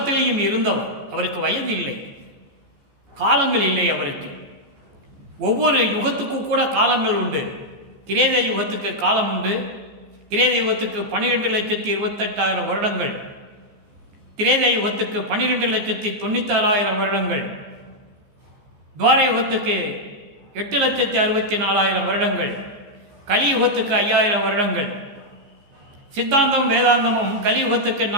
இருந்தவர். அவருக்கு வயது இல்லை, காலங்கள் இல்லை அவருக்கு. ஒவ்வொரு யுகத்துக்கும் கூட காலங்கள் உண்டு. கிரேத யுகத்துக்கு காலம் உண்டு. கிரேத யுகத்துக்கு 12,28,000 வருடங்கள், கிரேத யுகத்துக்கு 12,96,000 வருடங்கள், துவார யுகத்துக்கு 8,64,000 வருடங்கள், கலியுகத்துக்கு 5,000 வருடங்கள். சித்தாந்தம் வேதாந்தமும் கலியுகத்துக்கு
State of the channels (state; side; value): late; left; 14 ms